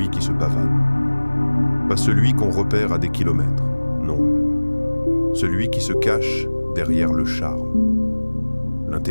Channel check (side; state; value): both; inverted; correlation -1.00